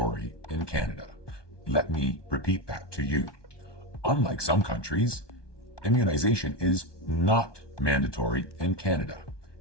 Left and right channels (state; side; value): late; right; 1.2 ms